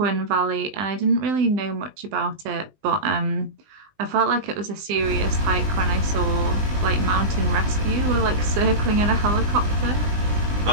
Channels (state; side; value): late; left; 20 ms